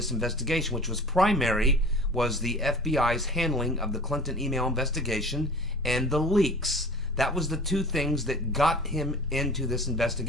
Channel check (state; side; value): normal; both; correlation 0.42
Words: investigation, which was the FBI's handling of the Clinton email investigation and the leaks. That was the two things that got him into this